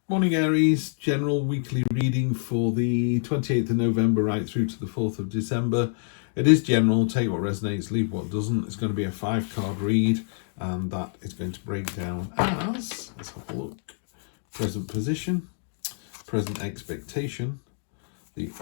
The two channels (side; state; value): right; silent; digital silence